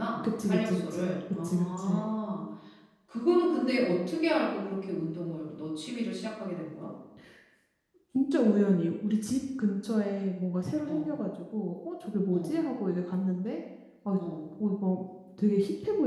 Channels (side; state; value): both; identical; correlation 1.00